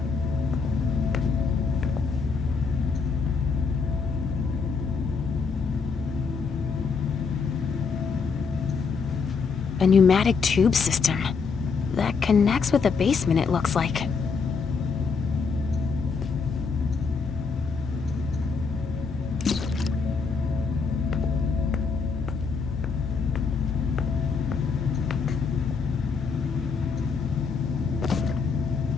A pneumatic tube system that connects with the basement, it looks like.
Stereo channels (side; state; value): right; quieter; 5.2 dB